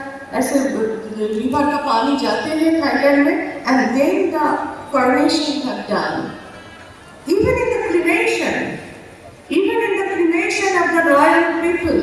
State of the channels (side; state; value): both; identical; correlation 1.00